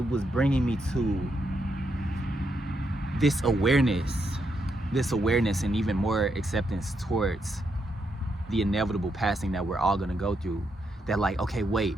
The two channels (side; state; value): both; normal; correlation 0.80